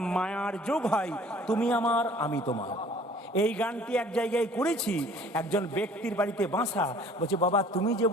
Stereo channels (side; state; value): both; normal; correlation 0.52